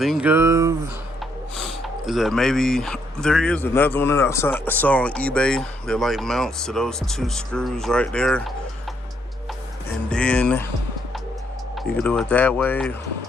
of is that maybe there is another one that I saw on eBay that like mounts to those two screws right there, and then you can do it that way.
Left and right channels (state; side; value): normal; both; correlation 0.72